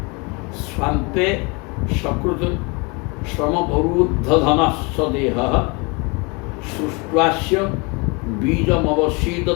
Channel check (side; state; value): right; quieter; 29.3 dB